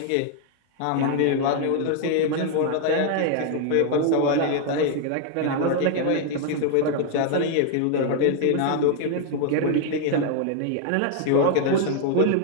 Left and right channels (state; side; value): different; both; correlation 0.00